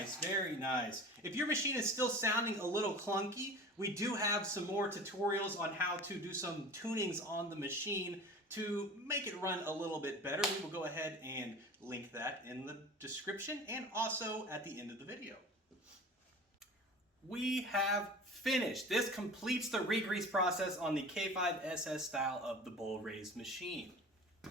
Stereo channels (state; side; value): normal; both; correlation 0.38